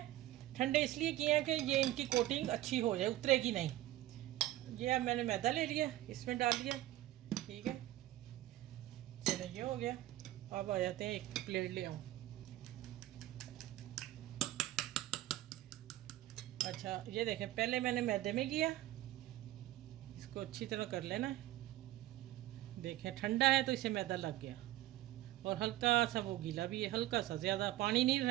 ठंडे इसलिए किए हैं कि ये इनकी कोटिंग अच्छी हो जाए, उतरेगी नहीं। ये अब मैंने मैदा ले लिया, इसमें डाल दिया। ठीक है। चलो, ये हो गया। अब आ जाते हैं, एक प्लेट ले आऊँ। अच्छा, ये देखें, पहले मैंने मैदे में किया, इसको अच्छी तरह कर लेना है। देखें, ठंडा है तो इसे मैदा लग गया, और हल्का सा वो गीला भी है, हल्का सा, ज़्यादा पानी नहीं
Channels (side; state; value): left; quieter; 15.2 dB